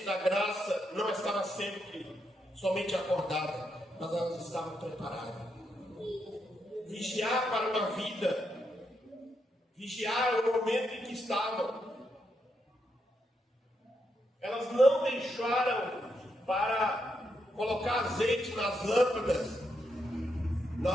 da graça não estava sempre somente acordada, mas elas estavam preparadas. Vigiar para uma vida, vigiar o momento em que estavam. Elas não deixaram para colocar azeite nas lâmpadas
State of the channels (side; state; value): both; normal; correlation 0.81